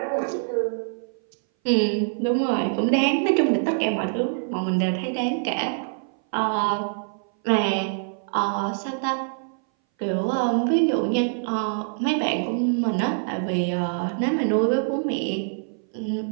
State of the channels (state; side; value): silent; left; 60 dB below the other